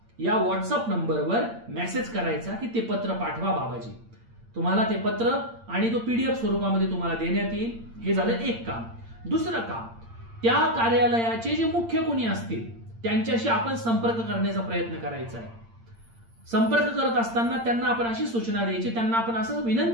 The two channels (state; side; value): late; left; 8.7 ms